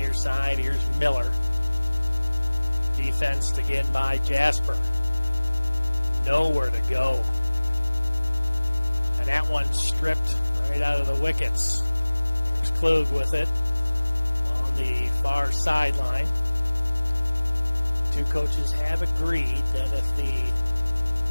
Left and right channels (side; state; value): both; inverted; correlation -1.00